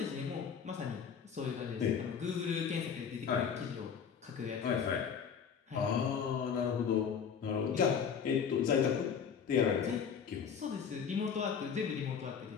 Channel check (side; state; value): right; quieter; 7.1 dB